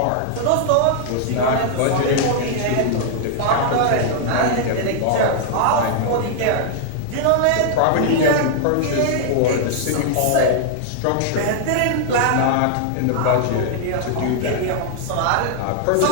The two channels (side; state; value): both; different; correlation -0.01